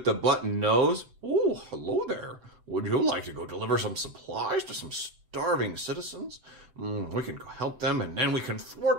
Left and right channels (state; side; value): late; left; 7.8 ms